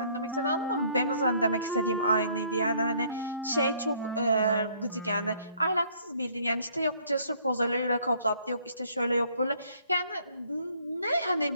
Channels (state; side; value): inverted; both; correlation -0.62